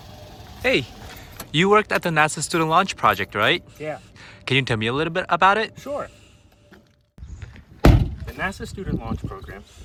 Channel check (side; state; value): both; identical; correlation 1.00